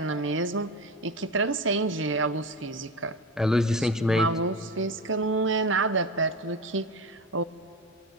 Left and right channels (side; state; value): both; normal; correlation 0.25